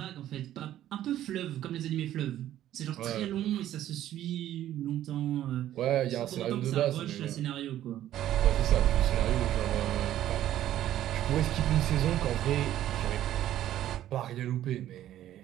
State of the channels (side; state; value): left; quieter; 12.5 dB